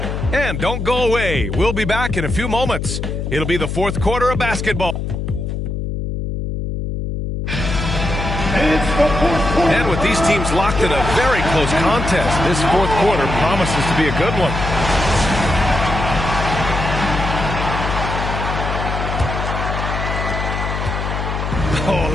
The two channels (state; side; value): noise; left; hum, 3 dB below the sound